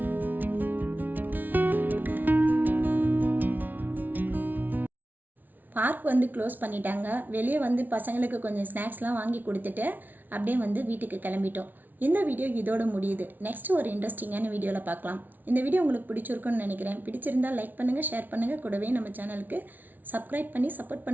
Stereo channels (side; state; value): left; late; 0.083 ms